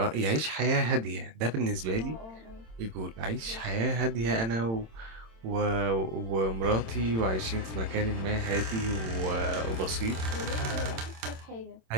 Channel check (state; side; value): late; left; 27 ms